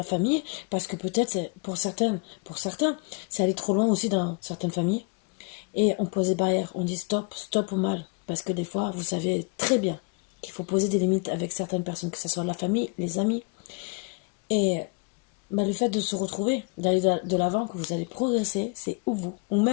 famille, parce que peut-être c'est pour certains, c'est aller trop loin aussi dans certaines familles. Et on pose des barrières, on dit stop au mal, parce que des fois vous savez très bien qu'il faut poser des limites avec certaines personnes, que ce soit la famille, les amis. Et le fait de se retrouver, d'aller de l'avant, que vous allez progresser, c'est vous, ou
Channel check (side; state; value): right; quieter; 31.6 dB